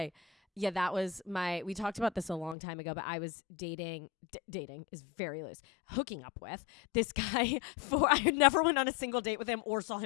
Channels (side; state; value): right; drops out; at 2.6 s